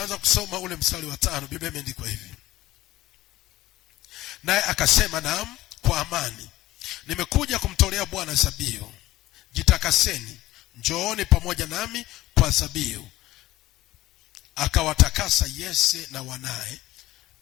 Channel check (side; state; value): right; quieter; 16.6 dB